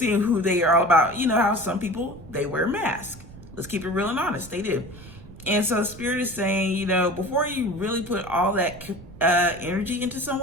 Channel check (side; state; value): right; noise; rumble, 18 dB below the sound